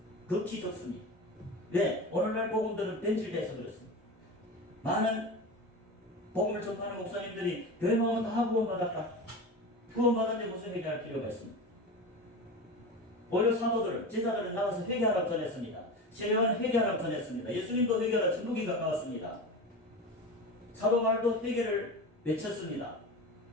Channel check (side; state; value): both; normal; correlation 0.27